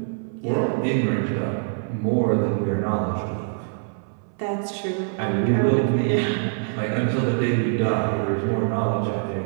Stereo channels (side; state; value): left; silent; 63 dB below the other